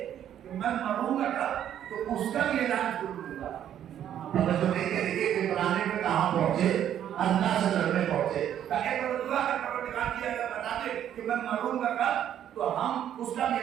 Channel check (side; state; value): left; quieter; 10.4 dB